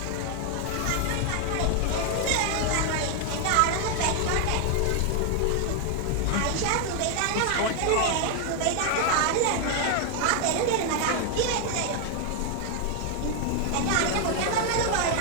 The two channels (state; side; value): different; both; correlation 0.00